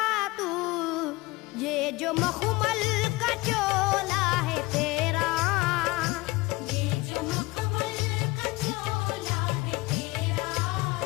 तू, ये जो मखमल का चोला है तेरा, ये जो मखमल का चोला है तेरा,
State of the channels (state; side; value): quieter; right; 22.1 dB